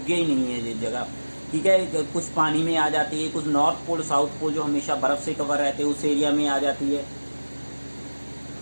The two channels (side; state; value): both; inverted; correlation -1.00